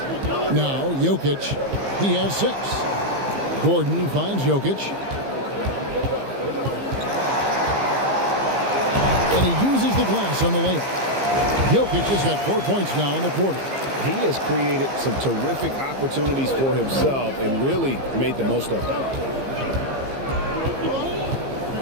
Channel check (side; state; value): left; late; 15 ms